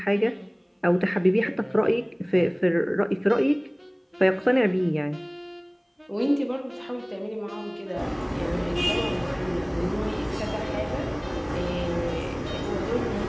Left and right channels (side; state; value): both; identical; correlation 1.00